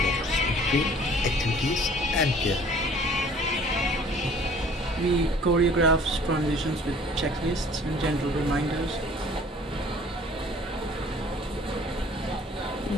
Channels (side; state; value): both; normal; correlation 0.52